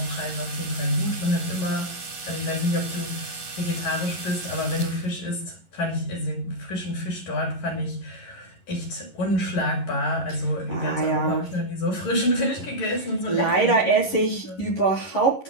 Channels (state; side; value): late; right; 11 ms